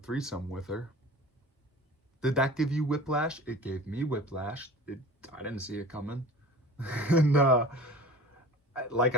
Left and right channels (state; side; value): normal; both; correlation 0.39